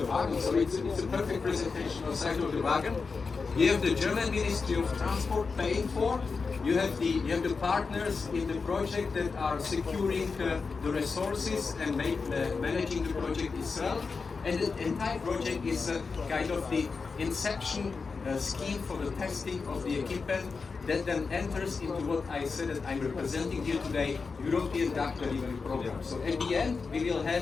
wagon. So it's a perfect presentation on the side of the wagon. You have the German Ministry of Transport paying for. You have the partners in the project that are securing the resources and managing the project itself. And the entire project is kind of the inception scheme for the testing of the equipment that then enters into what I said that I'm representing here today, European DAC delivery program. So at the end, we will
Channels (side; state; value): right; quieter; 4.7 dB